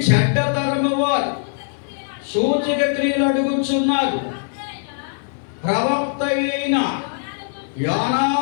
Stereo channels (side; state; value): right; silent; digital silence